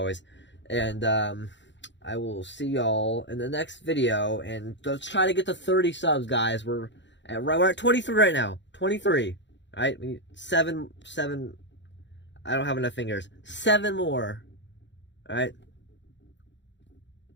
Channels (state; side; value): late; right; 0.53 ms